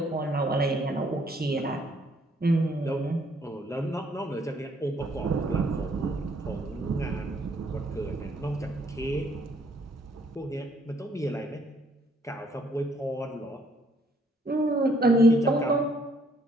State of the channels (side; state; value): both; normal; correlation 0.66